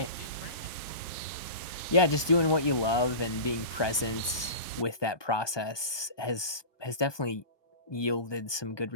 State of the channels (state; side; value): late; right; 1.2 ms